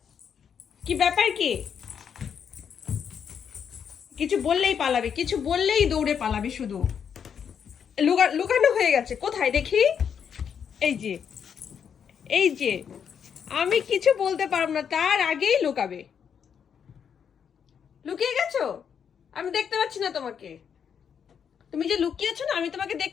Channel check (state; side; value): quieter; right; 7.5 dB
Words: কি ব্যাপার কি? কিছু বললেই পালাবে, কিছু বললেই দৌড়ে পালাবে শুধু। লুকানো হয়ে গেছে কোথায় দেখি? এই যে, এই যে, আমি কিছু বলতে পারবো না তার আগেই লুকাবে। লুকিয়ে গেছো? আমি দেখতে পাচ্ছি না তোমাকে। তুমি যে লুকিয়েছো না, আমি তোমাকে